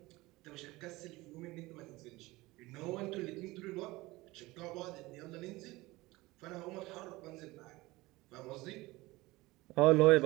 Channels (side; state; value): left; quieter; 20.5 dB